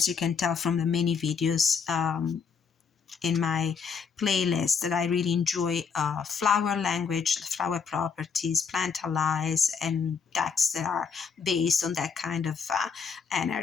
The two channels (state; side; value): quieter; right; 6.1 dB